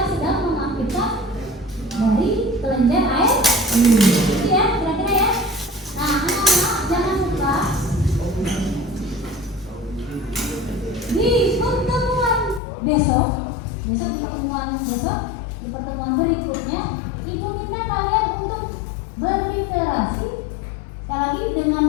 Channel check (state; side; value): drops out; right; at 12.6 s